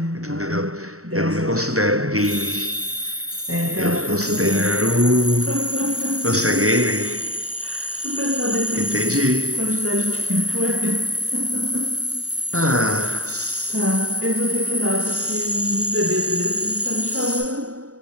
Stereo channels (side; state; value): left; late; 0.65 ms